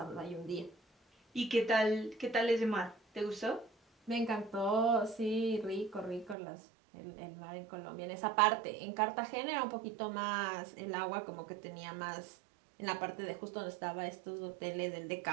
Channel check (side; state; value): left; drops out; at 6.4 s